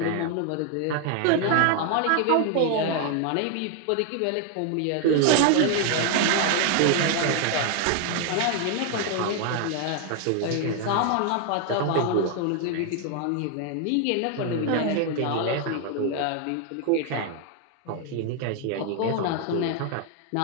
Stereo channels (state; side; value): different; both; correlation 0.01